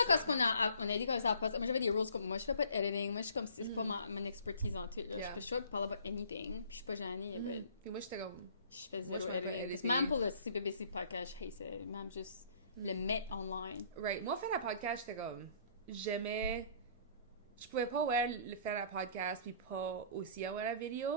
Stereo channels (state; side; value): inverted; both; correlation -0.54